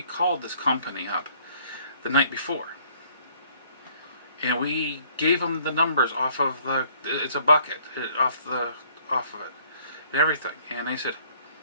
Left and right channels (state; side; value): inverted; both; correlation -0.61